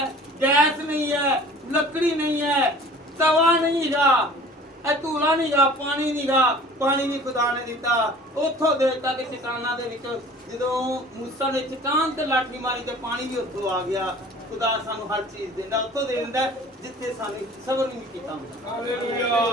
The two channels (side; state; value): both; normal; correlation 0.46